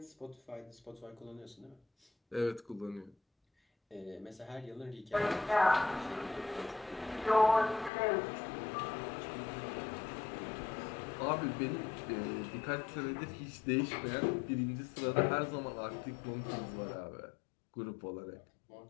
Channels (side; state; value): right; drops out; at 7.9 s